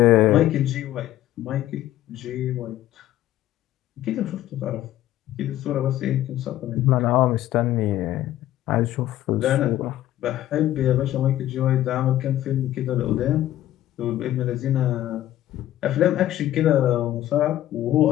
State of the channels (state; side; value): quieter; right; 13.6 dB